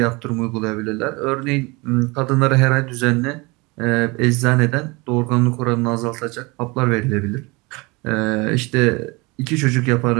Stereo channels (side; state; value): left; quieter; 25.8 dB